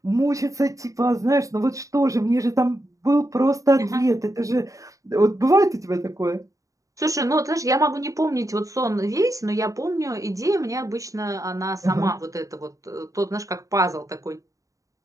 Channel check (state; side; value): late; left; 0.16 ms